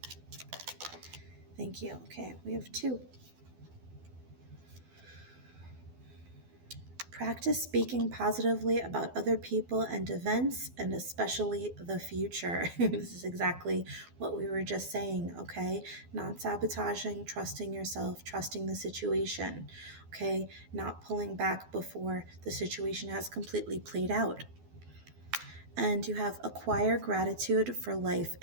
Thank you. Okay, we have 2. Practice speaking positively about other people and events, and especially the future. This is exactly what we were just saying, okay? Not sabotaging, trusting yourself, trusting the situation, okay? Not pulling back before the situation has completely played out. And you have acquire gratitude for life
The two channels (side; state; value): left; late; 12 ms